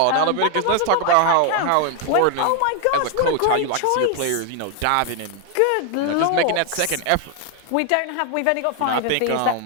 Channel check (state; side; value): different; both; correlation 0.00